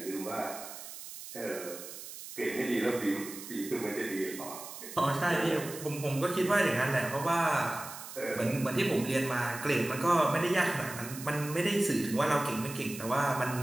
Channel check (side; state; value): right; noise; hiss, 12 dB below the sound